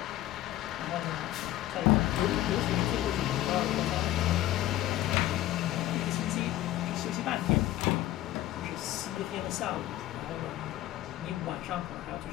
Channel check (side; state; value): right; quieter; 14.4 dB